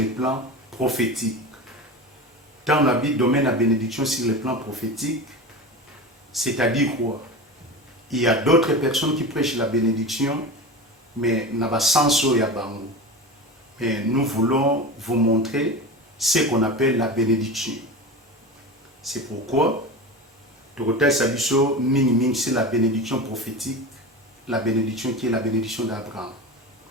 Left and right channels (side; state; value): both; normal; correlation 0.28